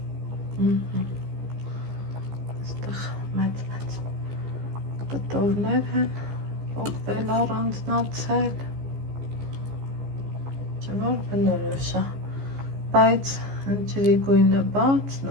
Այստեղ մեծ կտորներ են, պոկվել առանձնացել, չէ որ բնորոշ է, բայց ջրի գույնը բաց,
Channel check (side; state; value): left; late; 15 ms